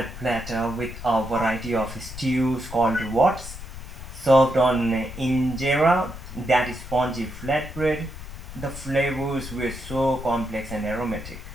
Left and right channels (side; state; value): left; noise; rumble, 11 dB below the sound